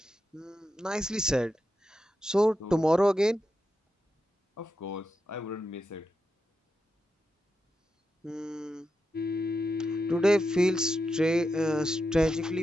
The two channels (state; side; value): normal; both; correlation 0.87